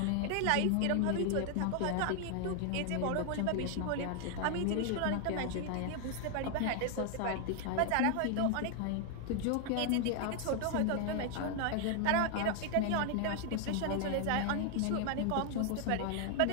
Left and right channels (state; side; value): different; both; correlation 0.00